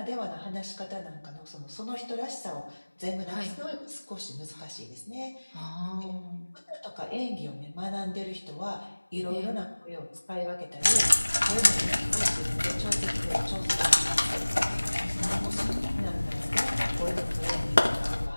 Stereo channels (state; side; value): inverted; both; correlation -1.00